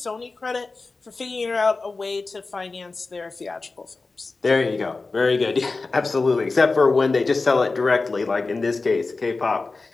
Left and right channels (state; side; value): quieter; right; 3.8 dB